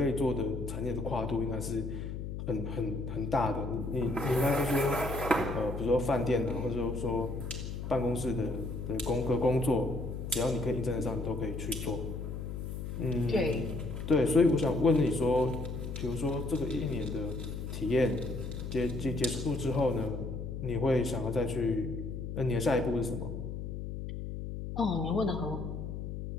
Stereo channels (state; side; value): noise; left; hum, 6 dB below the sound